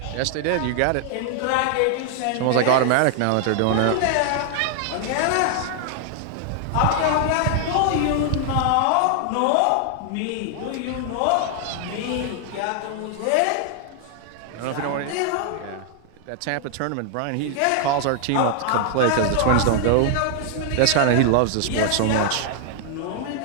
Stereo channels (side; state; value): both; different; correlation 0.00